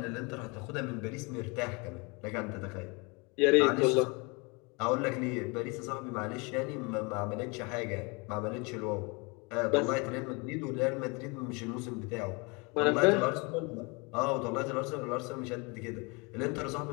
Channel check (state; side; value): quieter; right; 29.3 dB